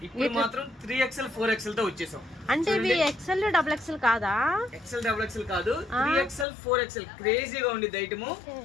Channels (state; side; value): drops out; right; at 6.5 s